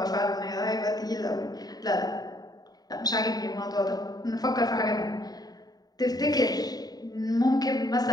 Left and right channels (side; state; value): right; late; 0.19 ms